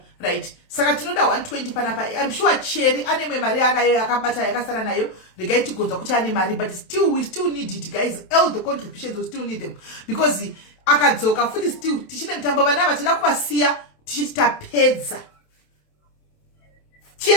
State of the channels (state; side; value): late; right; 27 ms